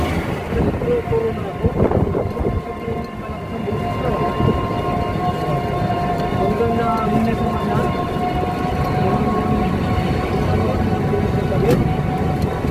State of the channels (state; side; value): identical; both; correlation 1.00